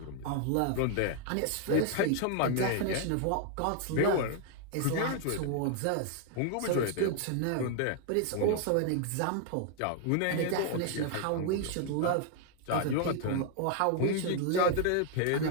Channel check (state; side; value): different; both; correlation 0.00